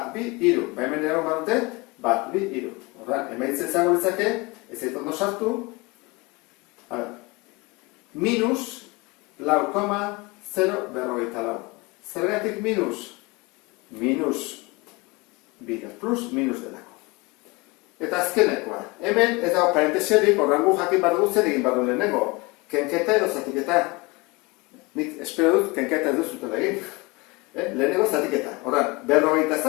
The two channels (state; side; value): quieter; right; 25.0 dB